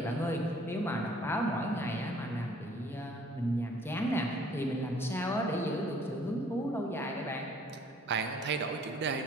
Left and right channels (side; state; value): both; normal; correlation 0.58